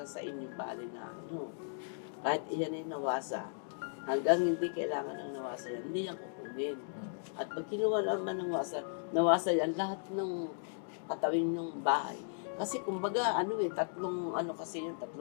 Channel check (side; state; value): right; silent; digital silence